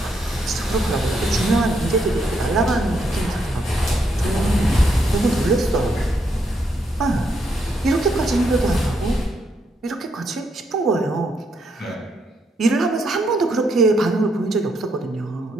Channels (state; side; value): normal; both; correlation 0.77